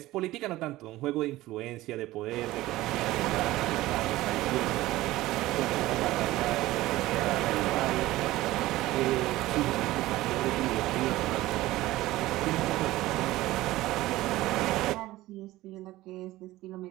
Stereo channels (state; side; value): quieter; left; 17.1 dB